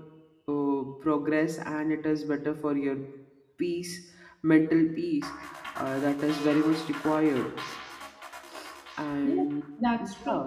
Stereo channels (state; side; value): identical; both; correlation 1.00